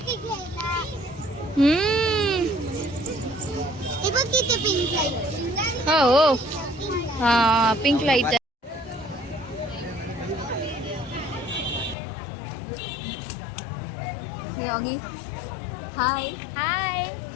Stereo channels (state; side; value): drops out; right; at 12.0 s